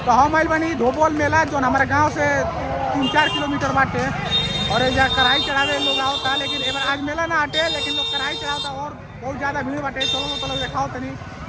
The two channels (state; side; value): identical; both; correlation 1.00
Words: तो हम आइल बनी धोबोल मेला जो हमारे गांव से 3-4 किलोमीटर बाटे और यहाँ कढ़ाई चढ़ावे लोग आवता, लेकिन एक बार आज मेला ना हटे लेकिन लोग कढ़ाई चढ़ाता और बहुत ज़्यादा भीड़ बाटे। चलो तो लोग देखाओ तनी,